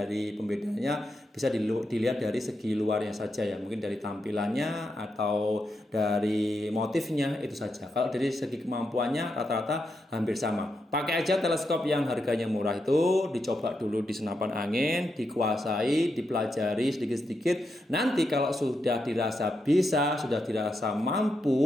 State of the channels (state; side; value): normal; both; correlation 0.84